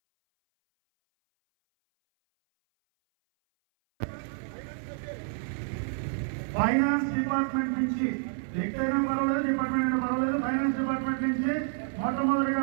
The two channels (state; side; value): silent; left; 58 dB below the other